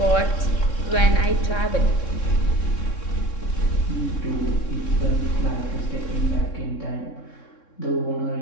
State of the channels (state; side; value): late; right; 3.6 ms